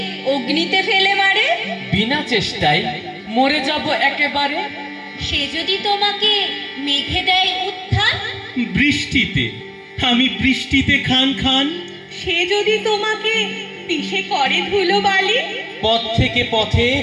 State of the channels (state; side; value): identical; both; correlation 1.00